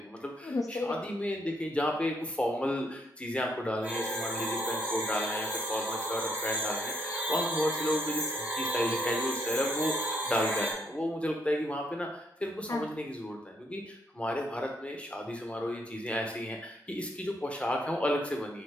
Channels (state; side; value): normal; both; correlation 0.72